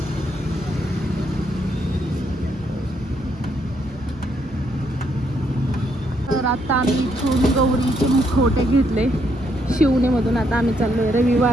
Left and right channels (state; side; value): normal; both; correlation 0.74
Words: तर आता आम्ही इथून गौरीचे मुखवटे घेतले शिवणीमधून. आता आम्ही चाललोय